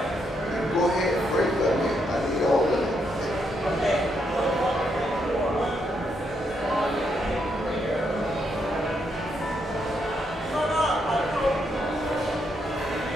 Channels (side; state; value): both; normal; correlation 0.78